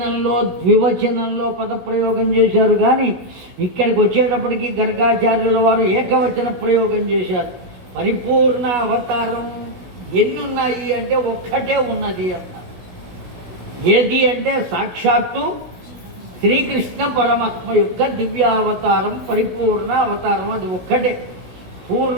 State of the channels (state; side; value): late; left; 16 ms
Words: ద్వివచనంలో పదప్రయోగం చేశారు, కానీ ఇక్కడికి వచ్చేటప్పటికి గర్గాచార్యుల వారు ఏకవచన ప్రయోగం చేశారు. పరిపూర్ణ అవతారం ఎన్నున్నాయి అంటే ఒక్కటే ఉన్నది అన్నారు. ఏది అంటే సాక్షాత్తు శ్రీకృష్ణ పరమాత్మ యొక్క దివ్యావతారం పరిపూర్ణ అవతారం, అది ఒక్కటే.